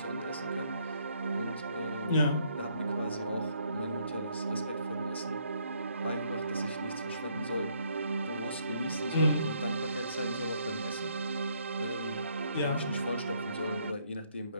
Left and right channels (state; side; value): inverted; both; correlation -0.69